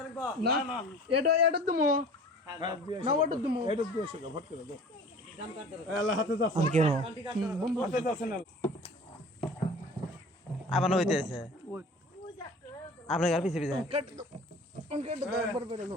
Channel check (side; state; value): both; normal; correlation 0.43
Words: না এটা তুমি না ওটা তুমি এটা দিয়েছো ভোট করে দাও আল্লাহ হাতে যাচ্ছে কেন বন্ধু হাতে যাচ্ছে না আবার হইতেছে আপনার পিছে পিছে কেটে